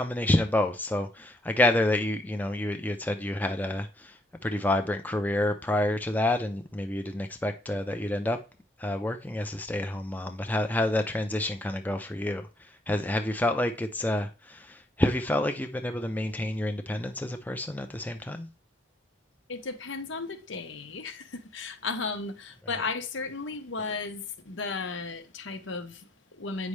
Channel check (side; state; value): both; normal; correlation 0.70